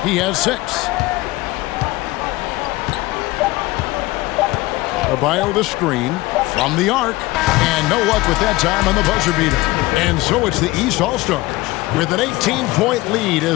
He has 6. Adebayo the screen from the arc. And no luck with that time on the buzzer beater. And so it's the East All-Stars with an 18-point lead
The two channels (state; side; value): quieter; right; 19.7 dB